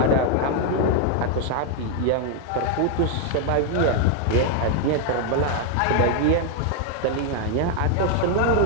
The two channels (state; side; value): different; both; correlation 0.01